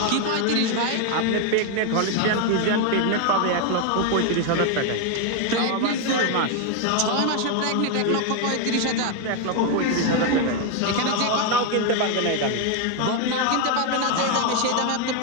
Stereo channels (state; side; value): different; both; correlation 0.01